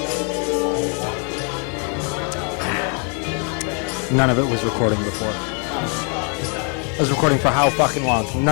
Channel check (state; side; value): quieter; right; 39.2 dB